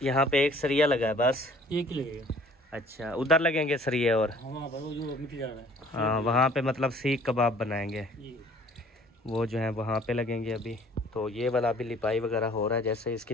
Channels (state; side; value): normal; both; correlation 0.54